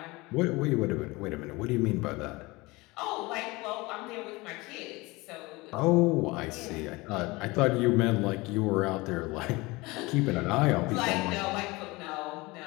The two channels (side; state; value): right; quieter; 22.8 dB